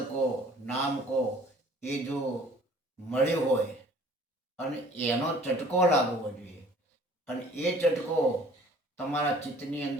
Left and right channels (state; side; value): normal; both; correlation 0.52